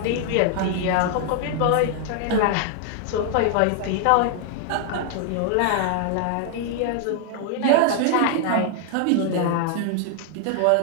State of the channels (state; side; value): different; both; correlation 0.00